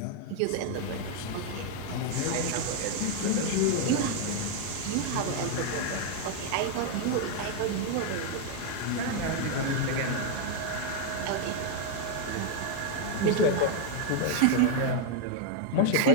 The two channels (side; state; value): both; different; correlation 0.01